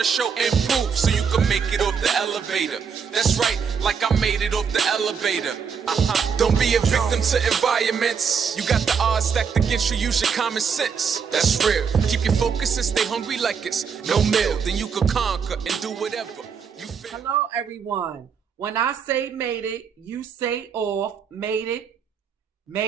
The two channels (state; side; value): quieter; left; 6.4 dB